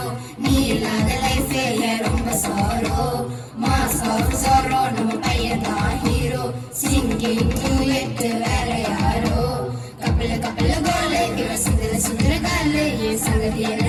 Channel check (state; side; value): identical; both; correlation 1.00